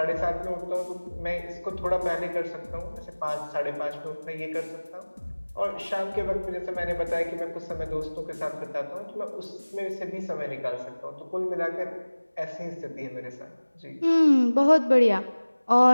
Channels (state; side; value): inverted; both; correlation -1.00